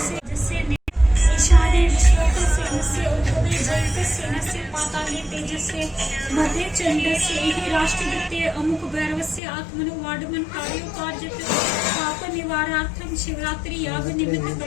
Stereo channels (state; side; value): drops out; right; at 9.4 s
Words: जस्य ईशाने विश्वकस्य नस्य उद्भवे जयकस्य नस्य पाताले तेजस्य मध्ये चंडस्य हि राष्ट्रदत्ते अमुक भैरवस्य आत्मनो वाडमन कार्योपार्जित पाप निवारार्थम शिवरात्रि याग निमित्त